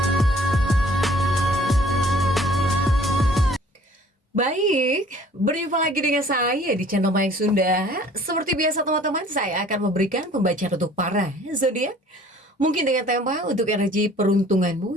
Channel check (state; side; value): normal; both; correlation 0.53